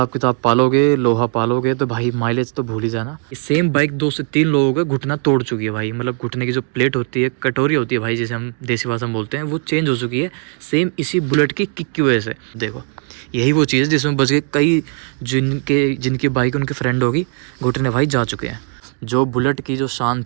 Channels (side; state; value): left; quieter; 40.0 dB